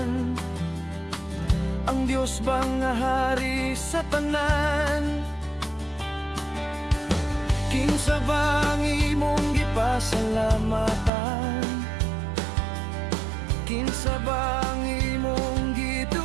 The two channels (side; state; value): left; drops out; at 11.1 s